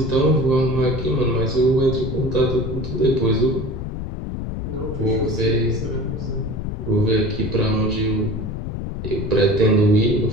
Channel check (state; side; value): noise; left; rumble, 5 dB below the sound